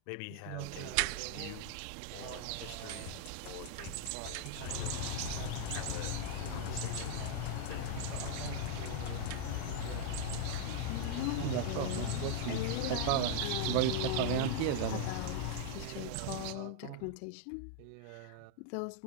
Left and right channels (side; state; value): both; different; correlation -0.01